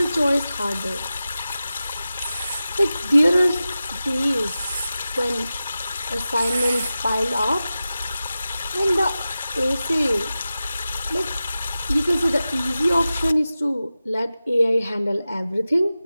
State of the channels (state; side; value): inverted; both; correlation -0.94